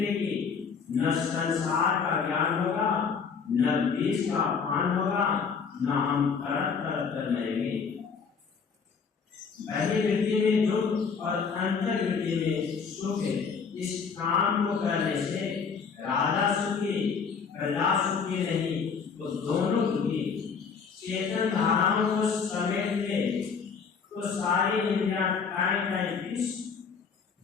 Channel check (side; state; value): right; quieter; 5.8 dB